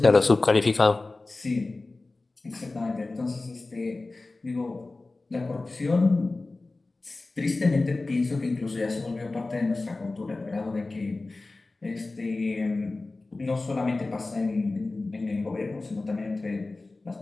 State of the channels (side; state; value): right; quieter; 3.3 dB